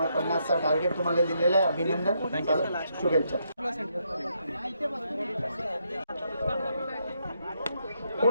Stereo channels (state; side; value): inverted; both; correlation -0.77